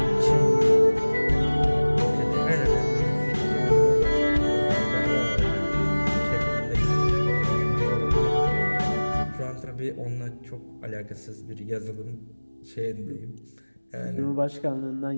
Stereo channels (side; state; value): both; inverted; correlation -1.00